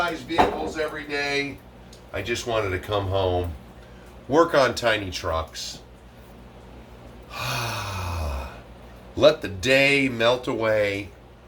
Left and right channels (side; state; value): both; identical; correlation 1.00